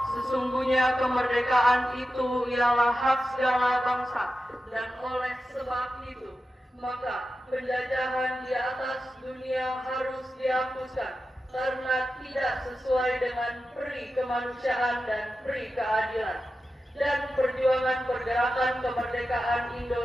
sesungguhnya kemerdekaan itu ialah hak segala bangsa, dan oleh sebab itu maka penjajahan di atas dunia harus dihapuskan karena tidak sesuai dengan peri kemanusiaan dan peri keadilan. Dan perjuangan pergerakan kemerdekaan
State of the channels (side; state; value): both; normal; correlation 0.92